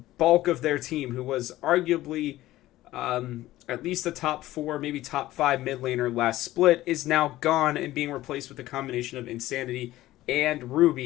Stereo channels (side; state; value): right; quieter; 15.9 dB